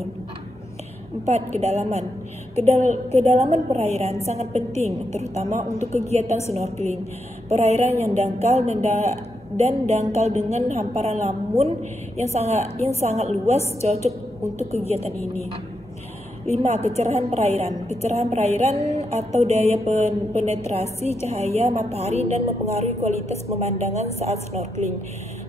4. Kedalaman. Kedalaman perairan sangat penting, terutama untuk kegiatan snorkeling. Perairan yang dangkal dan dangkal dengan hamparan lamun yang sangat luas cocok untuk kegiatan ini. 5. Kecerahan perairan. Kecerahan perairan atau daya penetrasi cahaya matahari dan mempengaruhi kualitas pemandangan saat snorkeling.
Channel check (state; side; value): normal; both; correlation 0.83